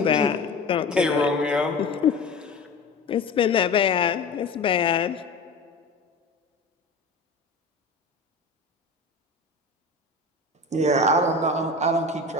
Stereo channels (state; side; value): quieter; right; 3.3 dB